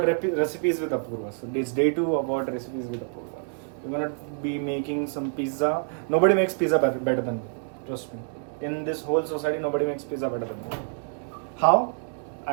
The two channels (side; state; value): left; silent; 60 dB below the other